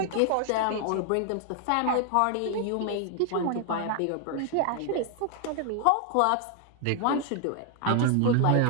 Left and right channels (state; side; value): different; both; correlation 0.00